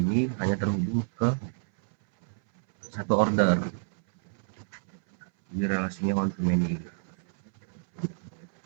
hanya terhubung ke satu order. Jadi relasinya one to many.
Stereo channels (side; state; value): left; silent; 59 dB below the other